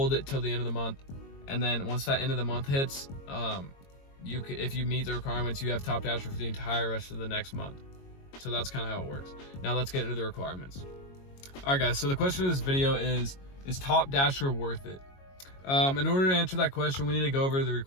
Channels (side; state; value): right; late; 22 ms